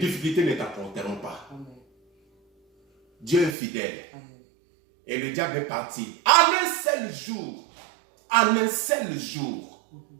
ne t'apporteront pas. Dieu est fidèle. Et le diable est parti. En un seul jour. En un seul jour.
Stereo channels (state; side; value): drops out; left; at 3.6 s